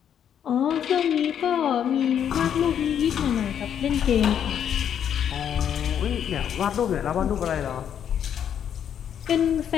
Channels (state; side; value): quieter; right; 9.0 dB